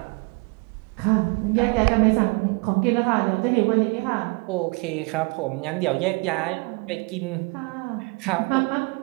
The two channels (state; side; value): quieter; left; 29.0 dB